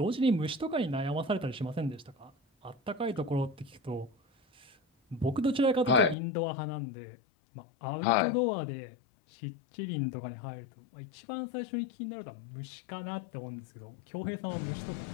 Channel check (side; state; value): right; drops out; at 6.2 s